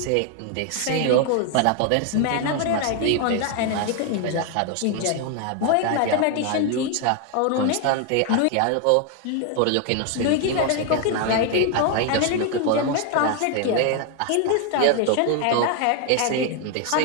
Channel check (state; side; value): different; both; correlation 0.01